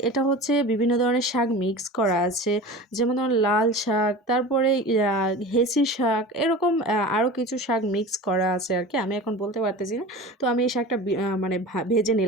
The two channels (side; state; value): both; normal; correlation 0.34